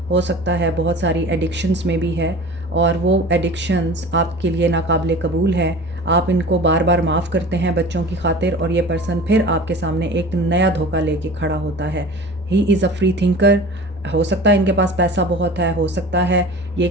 हो सकता है बहुत सारी एडिक्शंस में भी है और वो एडिक्शंस आपके लिए नाकाबिले कबूल है। आप इनको बार बार माफ़ करते हैं बच्चों की खातिर और ये पर्सन फिर आपके सामने एक नया धोखा लेके खड़ा होता है। He is a free thinker. हो सकता है इनके पास पैसा बहुत है, हो सकता है ये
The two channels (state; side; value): normal; both; correlation 0.38